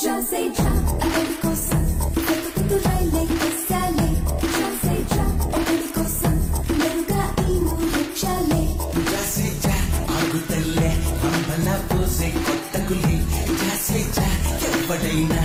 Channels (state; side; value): identical; both; correlation 1.00